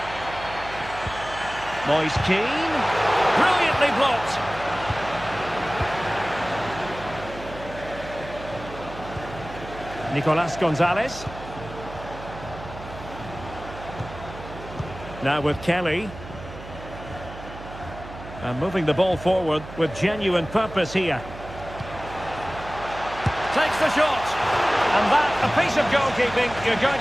Moise Keane. Brilliantly blocked. Nicolas Gonzalez. Now with Kelly. And moving the ball forward with genuine purpose here. Takes the shot. And that, a piece of goalkeeping you're going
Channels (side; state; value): right; noise; hum, 14 dB below the sound